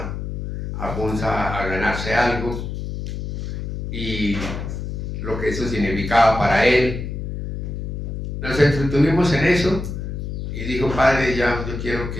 a Funza a ganarse algo y lo que eso significaba para él. Nos entretuvimos en eso y dijo: padre, ya yo quiero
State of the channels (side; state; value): left; noise; hum, 5 dB below the sound